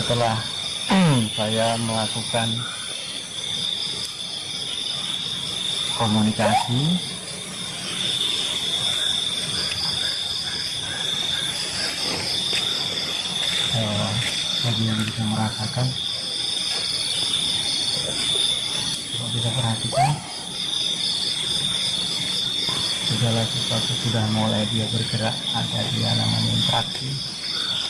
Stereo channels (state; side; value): identical; both; correlation 1.00